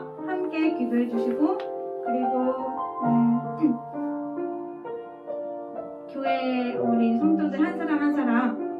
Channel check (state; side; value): identical; both; correlation 1.00